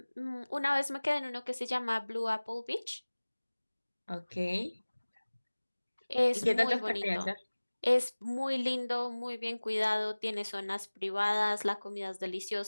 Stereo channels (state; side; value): inverted; both; correlation -1.00